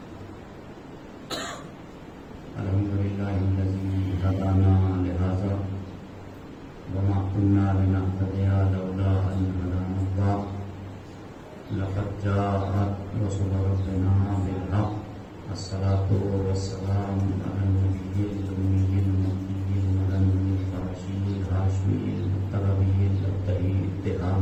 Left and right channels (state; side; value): identical; both; correlation 1.00